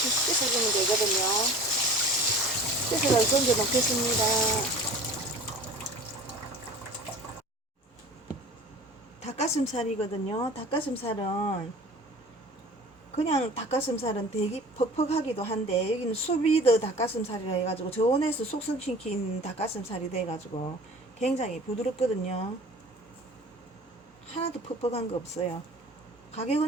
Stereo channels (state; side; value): normal; both; correlation 0.42